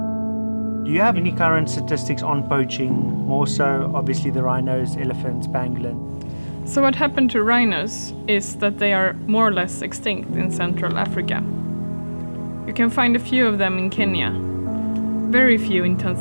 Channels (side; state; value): both; inverted; correlation -1.00